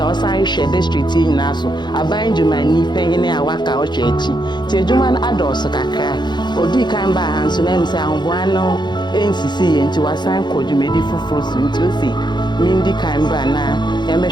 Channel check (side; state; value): right; late; 0.21 ms